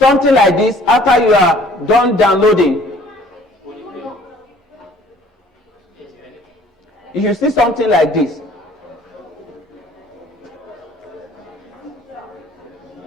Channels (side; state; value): both; normal; correlation 0.55